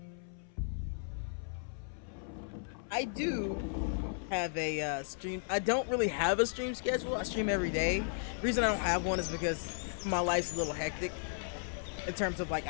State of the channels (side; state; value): right; silent; 54 dB below the other